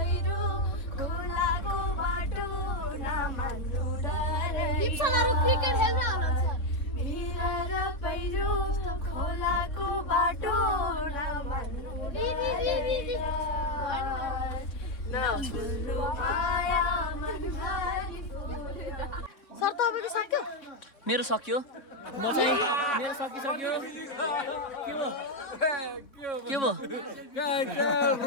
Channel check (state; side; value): late; right; 3.6 ms